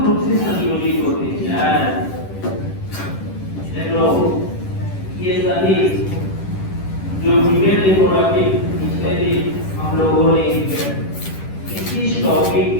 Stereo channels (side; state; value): right; late; 10 ms